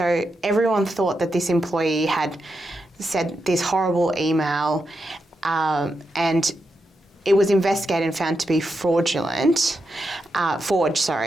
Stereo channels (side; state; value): both; normal; correlation 0.86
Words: everyone thought that this employee had said this horrible email, and it was investigated and found to be forged, and